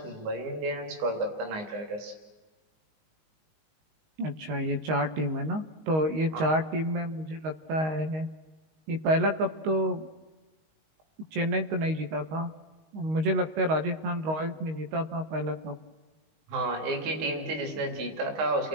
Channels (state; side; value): late; left; 19 ms